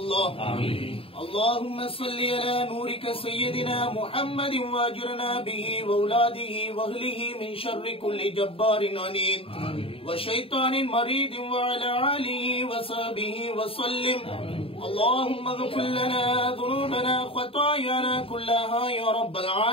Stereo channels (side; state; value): right; late; 0.27 ms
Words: آمين. اللهم صل على نورك سيدنا محمد واجرنا به واولاده واهله من شر كل جبار عنيد وشيطان مريد وعلى آله وصحبه وسلم. اللهم اغفر لنا ذنوبنا خطايانا كلها يا رب